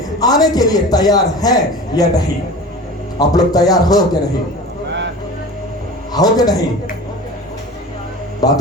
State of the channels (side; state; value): both; normal; correlation 0.36